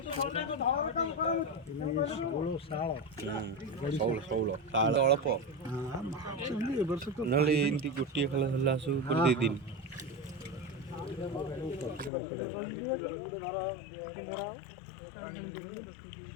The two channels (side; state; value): right; drops out; at 12.1 s